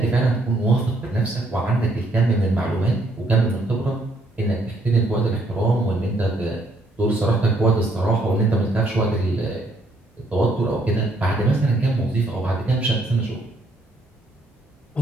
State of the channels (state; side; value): normal; both; correlation 0.70